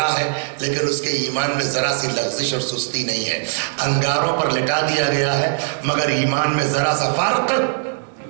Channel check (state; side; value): silent; left; digital silence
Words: ہے, لیکن اس کے ایمان میں ذرا سی لغزش اور سستی نہیں ہے. انگاروں پر لٹا دیا گیا ہے مگر ایمان میں ذرا سا فرق